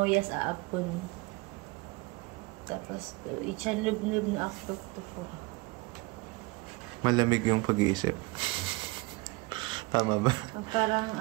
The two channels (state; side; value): quieter; left; 24.2 dB